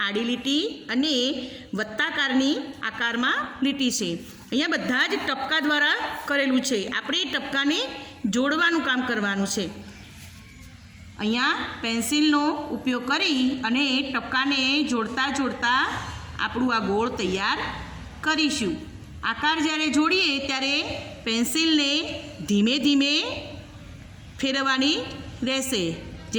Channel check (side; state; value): both; identical; correlation 1.00